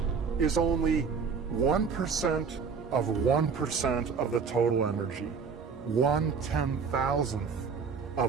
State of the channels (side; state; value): left; quieter; 5.7 dB